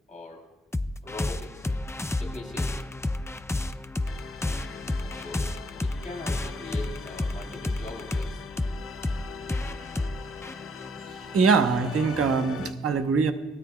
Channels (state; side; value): normal; both; correlation 0.66